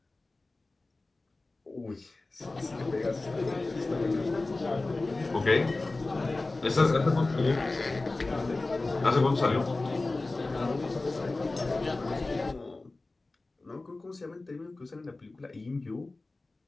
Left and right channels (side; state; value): right; quieter; 3.2 dB